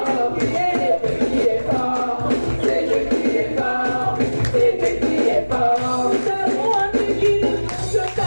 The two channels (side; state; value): both; inverted; correlation -1.00